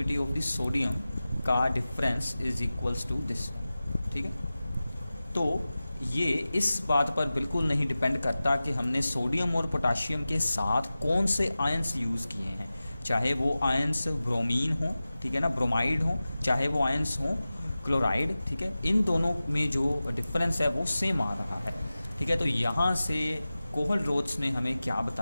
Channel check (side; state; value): both; inverted; correlation -0.96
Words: of the sodium का difference is equals to this. ठीक है, तो ये इस बात पर बिल्कुल नहीं डिपेंड करता कि हमने सोडियम और पोटाशियम के साथ कौन से आयन्स यूज़ किए हैं, चाहे वो आयन्स ब्रोमीन हो, ठीक है ना, ब्रोमाइड हो, चाहे वो आयन्स हो क्लोराइड। ठीक है, इन दोनों में जो डिफरेंस है वो सेम आ रहा है। ठीक है, तो यहाँ से कोहल-रोच ने हमें क्या